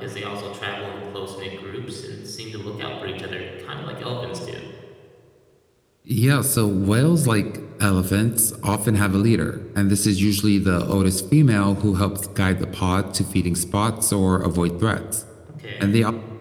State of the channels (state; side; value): identical; both; correlation 1.00